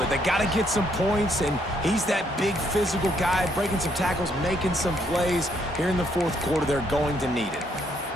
They got to get some points, and he's that big physical guy, breaking some tackles, making some plays. Here in the fourth quarter, they're going to need it.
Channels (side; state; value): both; normal; correlation 0.72